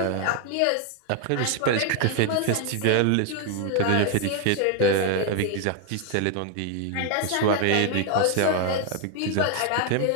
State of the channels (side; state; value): both; different; correlation 0.00